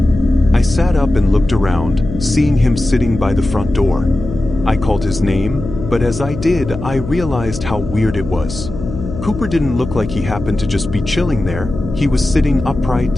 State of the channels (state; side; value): noise; left; hum, 9 dB below the sound